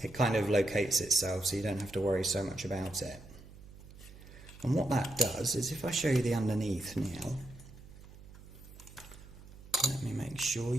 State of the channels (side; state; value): right; noise; hum, 18 dB below the sound